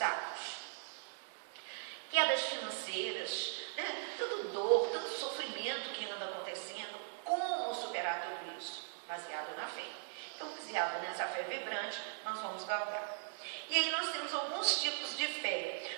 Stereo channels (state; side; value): silent; left; digital silence